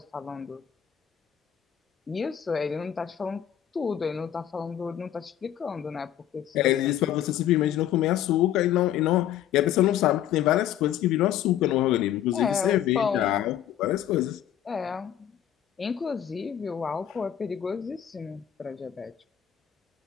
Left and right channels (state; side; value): quieter; right; 10.8 dB